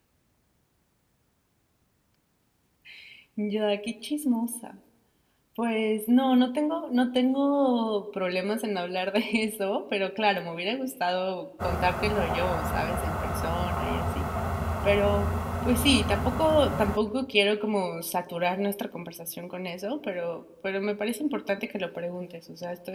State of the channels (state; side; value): identical; both; correlation 1.00